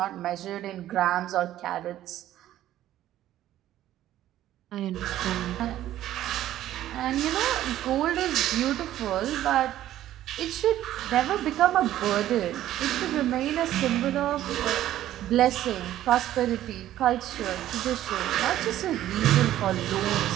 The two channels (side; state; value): left; quieter; 13.1 dB